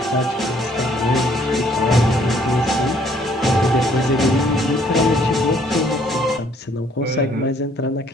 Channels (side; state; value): both; normal; correlation 0.64